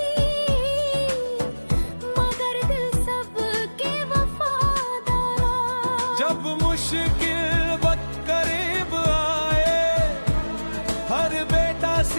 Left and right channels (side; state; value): both; inverted; correlation -1.00